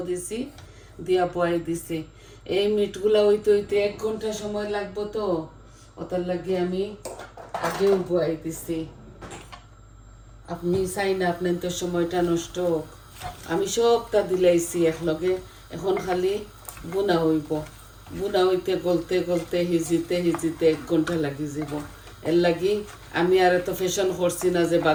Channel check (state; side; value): identical; both; correlation 1.00